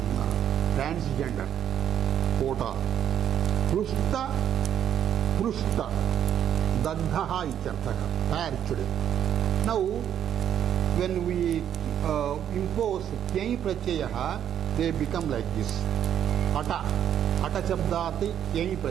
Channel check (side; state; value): left; quieter; 9.7 dB